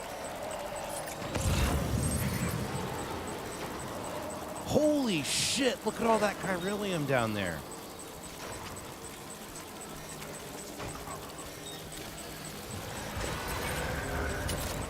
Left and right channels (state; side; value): identical; both; correlation 1.00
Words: Holy shit, look at all that chiralium down there.